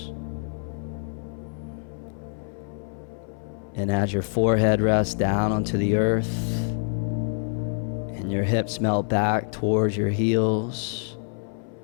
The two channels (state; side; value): silent; right; 61 dB below the other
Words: And as your forehead rests down onto the earth and your hips melt back towards your heels,